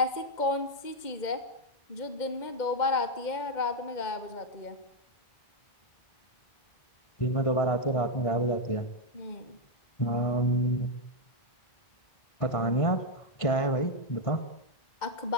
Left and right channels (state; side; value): late; right; 2.1 ms